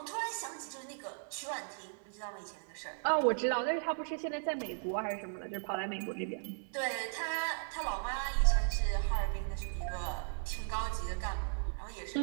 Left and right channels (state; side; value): silent; left; 53 dB below the other